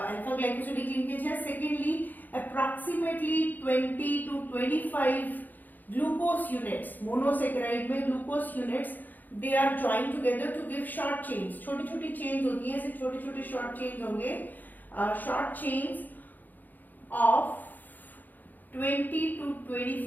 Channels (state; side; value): late; right; 0.085 ms